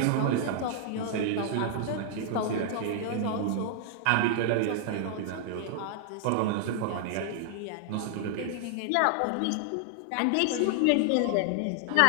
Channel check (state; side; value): different; both; correlation -0.01